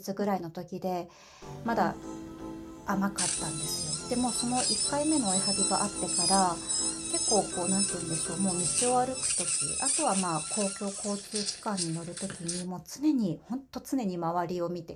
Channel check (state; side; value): identical; both; correlation 1.00